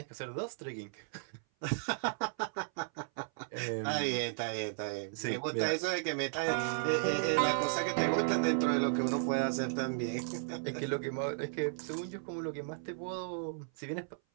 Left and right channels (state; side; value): silent; left; 54 dB below the other